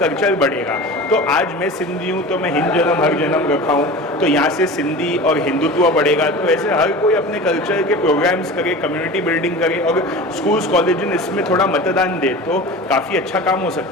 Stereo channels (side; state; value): both; normal; correlation 0.34